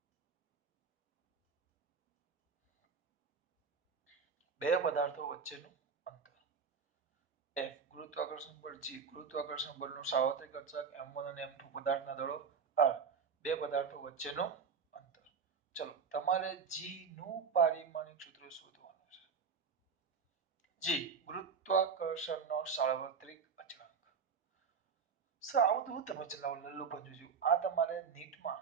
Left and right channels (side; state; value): left; quieter; 5.9 dB